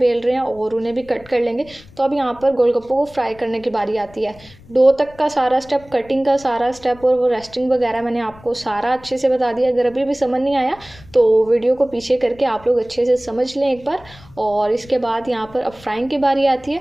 रहे हैं और उन्हें भी कट कर लेंगे। तो अब यहाँ पर गोलगप्पों को फ्राई करने की बारी आती है। डो तक का सारा स्टेप, कटिंग का सारा स्टेप और वो रेस्टिंग वगैरह मैंने आपको सारा अच्छे से बता दिया। अगर अभी भी समझ नहीं आया तो वीडियो को पीछे करके आप लोग अच्छे से समझ लें एक बार। और इसके बाद यहाँ पर अब फ्राइंग की बारी आती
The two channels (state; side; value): noise; left; rumble, 23 dB below the sound